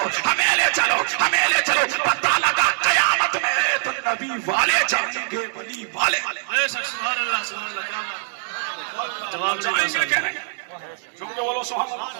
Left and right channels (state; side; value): silent; left; 64 dB below the other